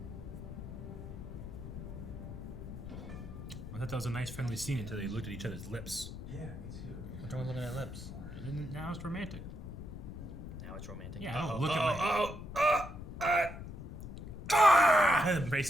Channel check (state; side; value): noise; left; rumble, 10 dB below the sound